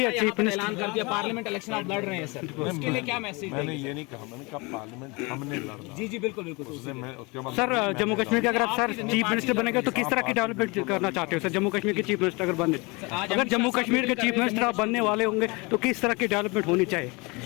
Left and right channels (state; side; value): quieter; right; 27.0 dB